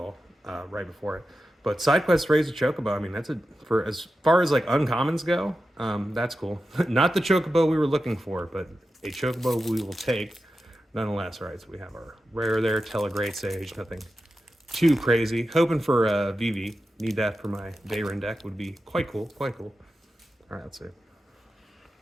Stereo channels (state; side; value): normal; both; correlation 0.91